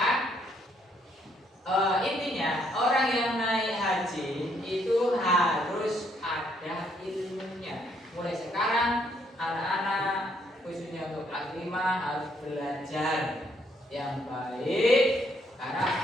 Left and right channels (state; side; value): normal; both; correlation 0.71